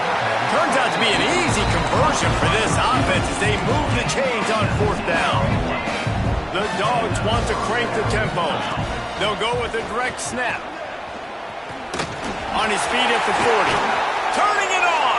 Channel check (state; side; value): identical; both; correlation 1.00